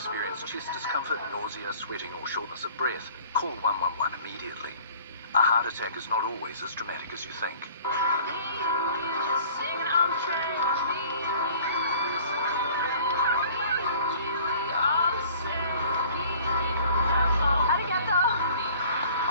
chest discomfort, nausea, sweating, or shortness of breath, call 111 immediately. A heart attack is not always as dramatic as you think.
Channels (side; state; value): both; inverted; correlation -0.51